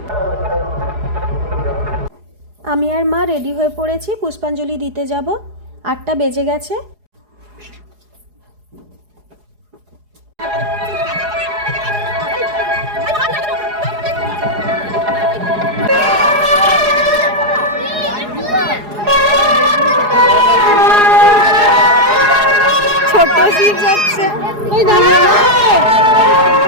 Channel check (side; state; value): left; late; 4.8 ms